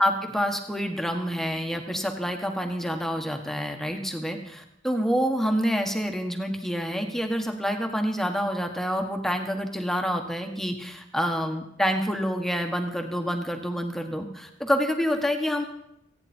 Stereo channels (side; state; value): both; normal; correlation 0.85